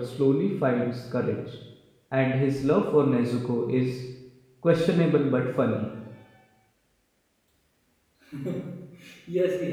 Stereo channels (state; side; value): identical; both; correlation 1.00